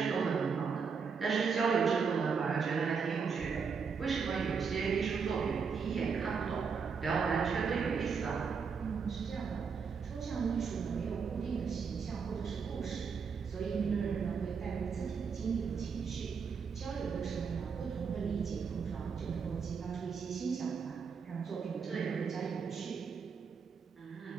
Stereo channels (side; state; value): left; quieter; 5.8 dB